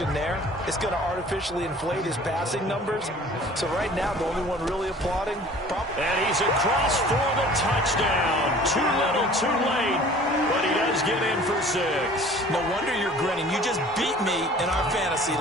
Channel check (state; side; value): normal; both; correlation 0.48